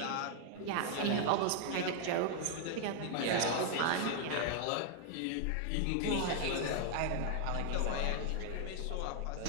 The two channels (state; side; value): different; both; correlation 0.00